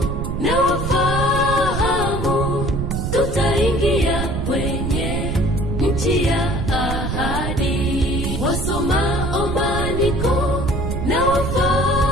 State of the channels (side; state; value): right; noise; rumble, 2 dB below the sound